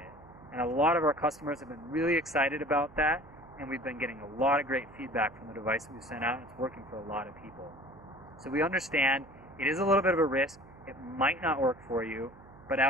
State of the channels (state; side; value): noise; right; hum, 22 dB below the sound